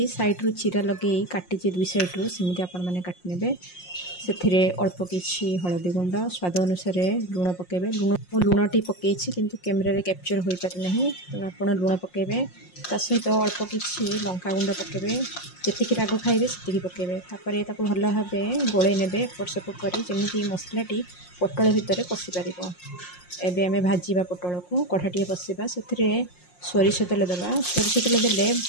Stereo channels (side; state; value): right; late; 5.6 ms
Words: साइड्रु चीरा लगे काटी दुई सैड्रु सेमती आपण मैंने काटि ने से अल्प किसी हलदी गुंड स्वाद अनुसार लुण पकेबे। लुणटी पकई किंतु कैमेरा कैप्चर हो पारि ना तेणु आप लुण पकेबे ता सहित अल्प किसी लंका गुंड पकेबे जी राग खाइबे से पकेबे। तापर ताको भल भाव गोले नेबे एपट सेपट करी जमी मसलाटी पटल भितर पशि पार। एबे आमे भाजीबा पटल को कढ़ाटी बसवा से सोरिष तेल देवा। सोरिष तेल देले